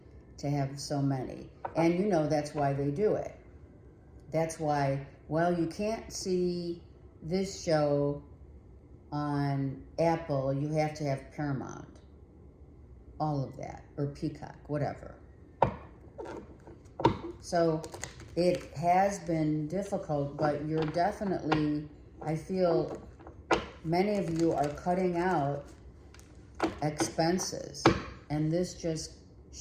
to have so many. And that's why they do it. That's why, well, you can't see this show on Apple, you have to have Paramount. All of that, or Peacock, whatever. So it has been difficult, but you're definitely, I feel many of you are cutting out expenses, and this just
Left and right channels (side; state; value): both; identical; correlation 1.00